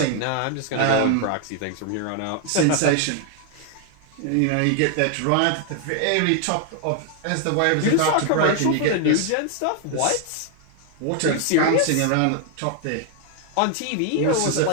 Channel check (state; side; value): different; both; correlation 0.00